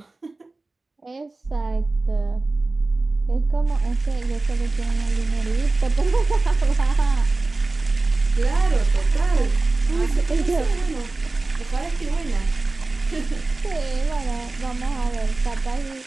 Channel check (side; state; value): left; quieter; 3.3 dB